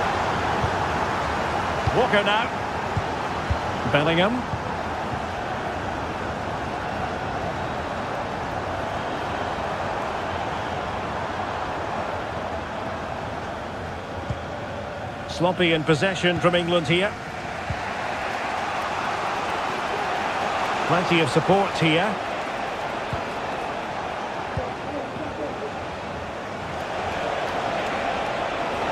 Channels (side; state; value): both; identical; correlation 1.00